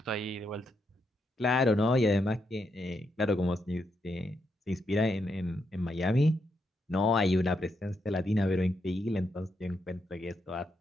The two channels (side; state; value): both; normal; correlation 0.80